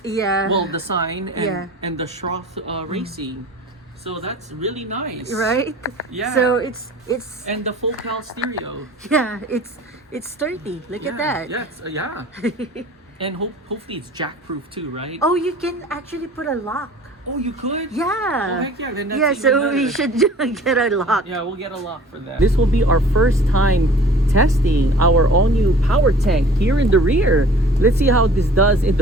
Yeah. Well, the sign and, Yeah. and the Schroth Racing. So that's really nice. Right? Yeah. So it's And the full cal stereo. yeah, it's sturdy. Look at that. Yes, yeah. And hopefully it's jack-proof too, right? Oh, you can actually put a lock. Oh, you could? Yeah. Oh, heck yeah, then that's Yeah, even so we better. should get a lock. Yeah, we'll get a lock for that. This will be our first time testing our all-new power tank here in the rear. Let's see how this does in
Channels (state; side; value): normal; both; correlation 0.47